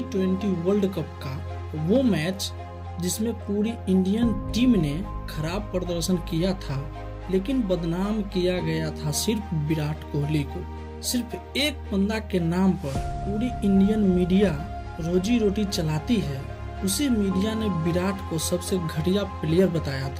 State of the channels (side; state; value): both; identical; correlation 1.00